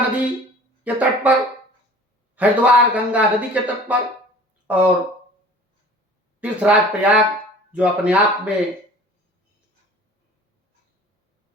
के तट पर, हरिद्वार गंगा नदी के तट पर, और तीर्थराज प्रयाग जो अपने आप में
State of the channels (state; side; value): normal; both; correlation 0.45